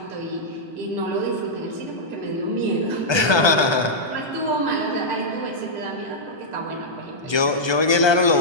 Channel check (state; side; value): late; right; 1.2 ms